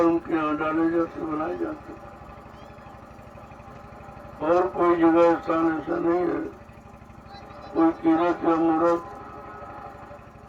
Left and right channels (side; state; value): both; identical; correlation 1.00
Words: उनके यहाँ डाले जाते, बनाए जाते। और कोई जगह स्थान ऐसा नहीं है, कोई तीर्थ या मूर्त,